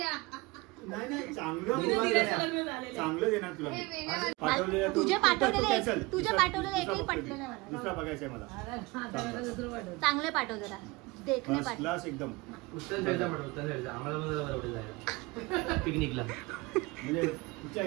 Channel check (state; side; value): quieter; left; 23.6 dB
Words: नाही चांगलं चांगलं देणार तुला. तुझे पाठवलेले एकही पटले नाही मला. दुसरा बघायचंय मला. चांगले पाठव जरा. देखणे पाठव क्लास एकदम उत्तन साईडचा उत्तन साईडचा आम्हाला पिकनिकला म्हणजे कुठच्या